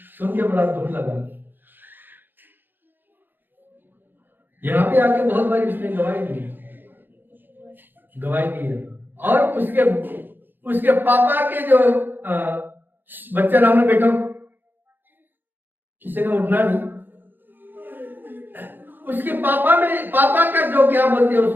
सुन के बड़ा दुख लगा। यहाँ पे आके बहुत बार उसने गवाही दी है, और उसके उसके पापा के जो बच्चा राम ने बेटा, किसी ने उठना नहीं, उसके पापा का जो क्या बोलते हैं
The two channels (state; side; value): late; left; 0.094 ms